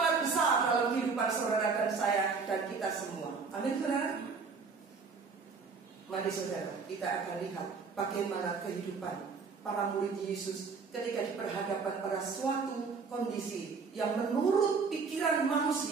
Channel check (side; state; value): left; quieter; 5.0 dB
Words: kehidupan saudara dan saya dan kita semua. Amin, saudara. Mari saudara, kita akan lihat bagaimana kehidupan para murid Yesus ketika diperhadapkan pada suatu kondisi yang menurut pikiran